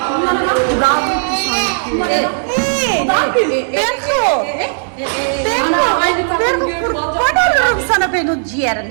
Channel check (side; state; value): left; silent; digital silence